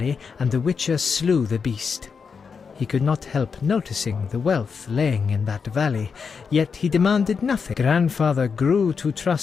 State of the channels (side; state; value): right; quieter; 5.8 dB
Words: and the witcher slew the beast. He could not help noticing the wealth laying in that valley, yet he demanded nothing. Grandfather grew to